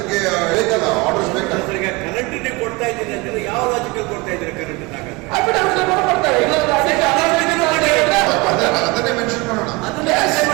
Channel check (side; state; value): left; quieter; 24.4 dB